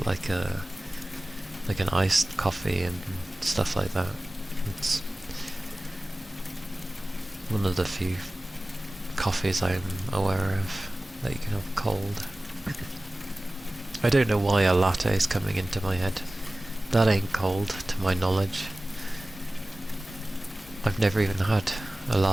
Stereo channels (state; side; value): normal; both; correlation 0.97